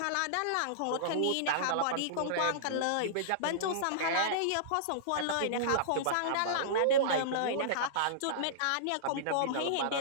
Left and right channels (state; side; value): different; both; correlation -0.02